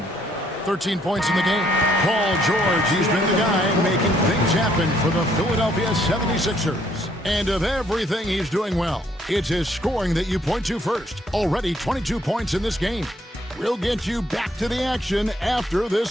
13 points in the game. Paul George, he's been the guy making things happen for the Philadelphia 76ers. And of everything he's doing well, it's his scoring that you point to first. Already 22 points in this game. We'll get you back to the action after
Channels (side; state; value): both; normal; correlation 0.67